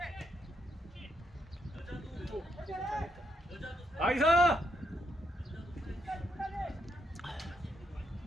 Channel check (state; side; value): normal; both; correlation 0.77